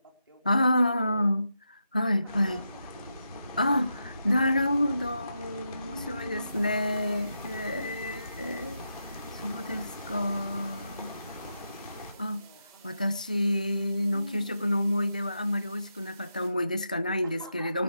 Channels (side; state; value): both; inverted; correlation -0.86